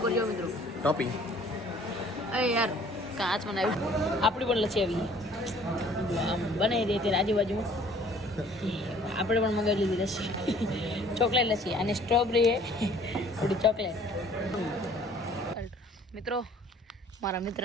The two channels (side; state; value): both; normal; correlation 0.55